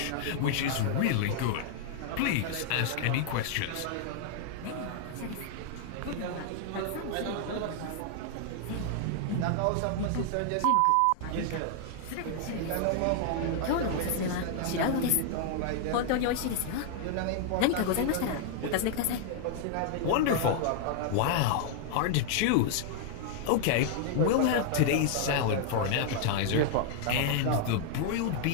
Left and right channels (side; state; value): both; different; correlation 0.00